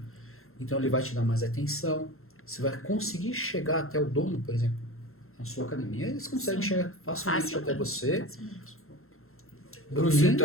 Então ele vai te dar mais atenção, você vai conseguir chegar até o dono, por exemplo, na sua academia, eles conseguem chegar facilmente até você. Se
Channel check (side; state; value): right; late; 0.62 ms